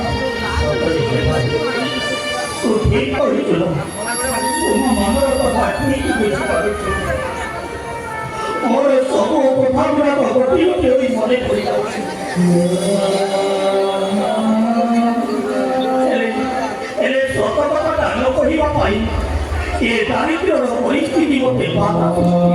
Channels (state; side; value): identical; both; correlation 1.00